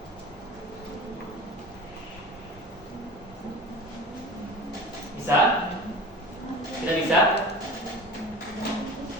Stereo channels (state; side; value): normal; both; correlation 0.36